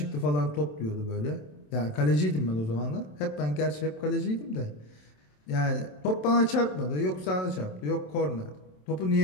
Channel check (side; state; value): right; late; 27 ms